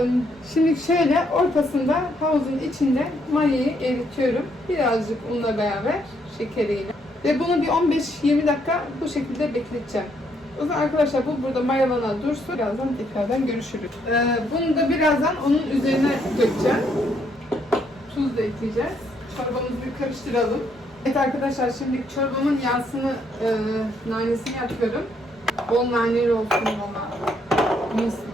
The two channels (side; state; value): both; normal; correlation 0.72